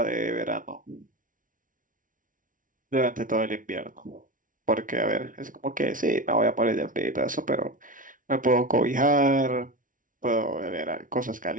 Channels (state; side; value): late; left; 0.38 ms